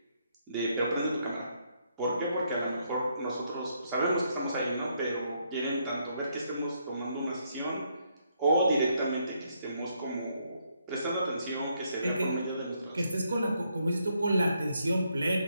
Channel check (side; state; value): both; inverted; correlation -0.75